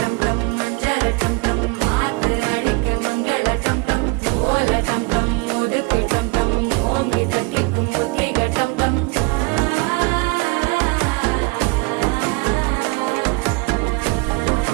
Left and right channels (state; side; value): quieter; left; 26.6 dB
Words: டம் மஞ்சள டம் டம் மாத்து அடிக்க மங்கள டம் டம் ஓல டம் டம் ஒதுக்கு டம் டம் ஓங்கி தட்டிக்கும் புத்திக டம் டம்